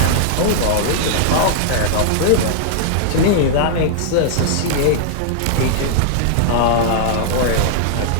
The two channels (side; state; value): both; different; correlation -0.01